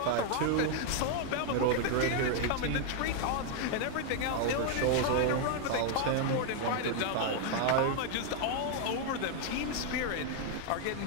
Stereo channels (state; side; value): different; both; correlation 0.01